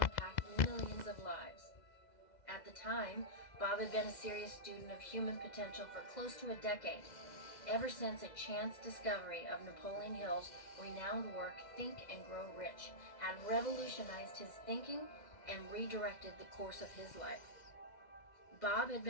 millions of lives. At the time, Bob had been a serious student of human potential for close to a decade, ever since a chance discovery of Napoleon Hill's renowned work Think and Grow Rich had revolutionized his thinking and redirected the course of his life. Bob had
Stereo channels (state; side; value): late; right; 2.0 ms